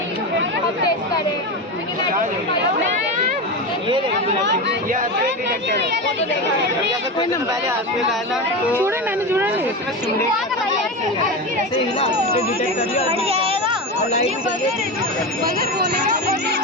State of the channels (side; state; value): both; normal; correlation 0.20